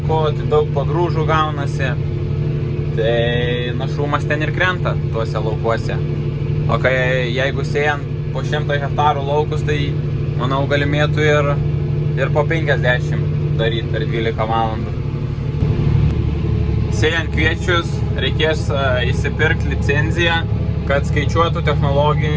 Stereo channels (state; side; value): identical; both; correlation 1.00